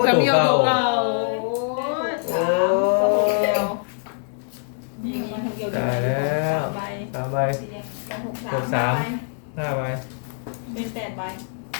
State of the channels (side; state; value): right; silent; 63 dB below the other